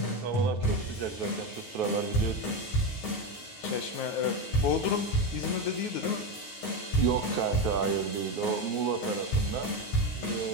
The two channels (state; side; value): late; right; 9.4 ms